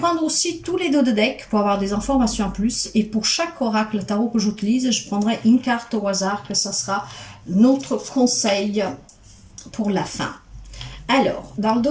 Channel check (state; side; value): identical; both; correlation 1.00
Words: aussi tous les dos de deck pour avoir des informations en plus. Et pour chaque oracle tarot que j'utilise, je prendrai une carte au hasard, que ça sera notre conseil pour la fin. Alors, dans le